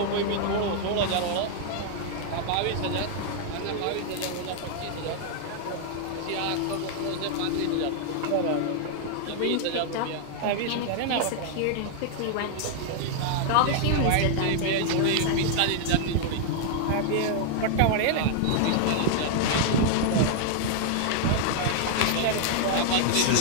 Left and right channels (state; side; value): different; both; correlation -0.01